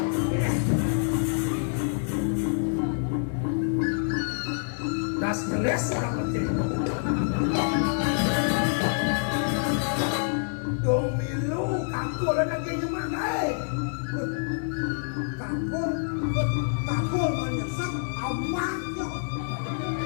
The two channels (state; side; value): silent; right; digital silence